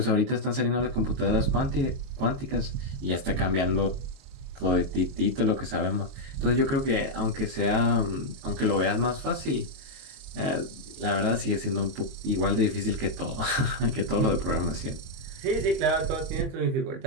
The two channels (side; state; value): left; late; 22 ms